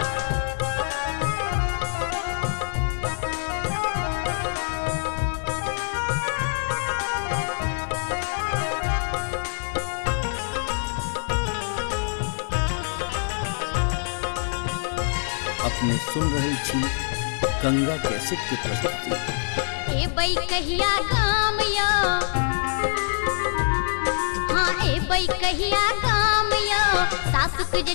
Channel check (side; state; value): right; silent; 62 dB below the other